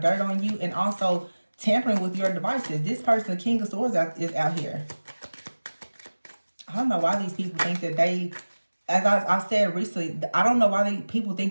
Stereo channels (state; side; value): inverted; both; correlation -1.00